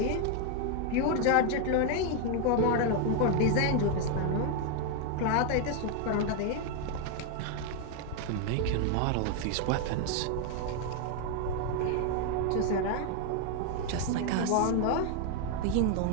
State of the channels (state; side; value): different; both; correlation 0.01